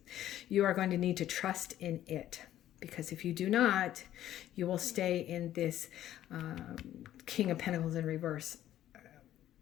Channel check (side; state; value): right; quieter; 12.5 dB